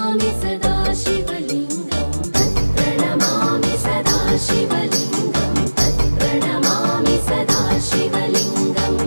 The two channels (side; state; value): both; inverted; correlation -1.00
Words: सदा शिवलिङ्गं तत्प्रणमामि सदा शिवलिङ्गं तत्प्रणमामि सदा शिवलिङ्गं